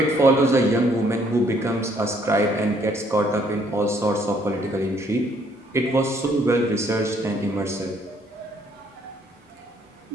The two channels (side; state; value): both; normal; correlation 0.66